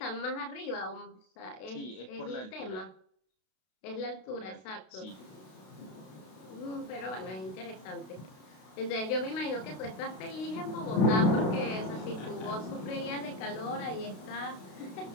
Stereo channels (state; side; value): late; right; 32 ms